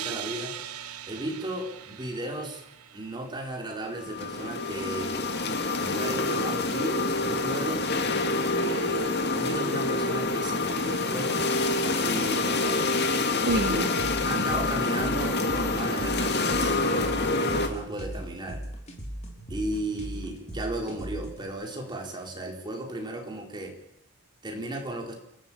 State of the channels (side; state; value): both; normal; correlation 0.13